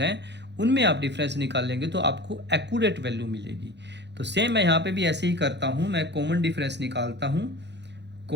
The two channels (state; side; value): late; left; 0.50 ms